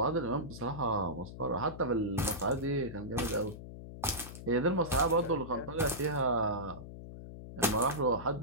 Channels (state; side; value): noise; left; hum, 12 dB below the sound